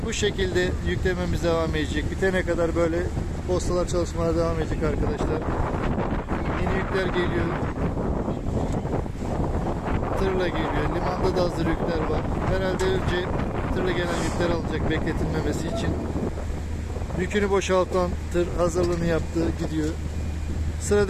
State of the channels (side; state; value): both; identical; correlation 1.00